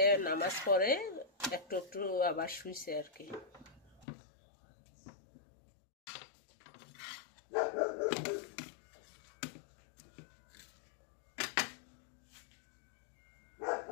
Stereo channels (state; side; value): drops out; right; at 4.0 s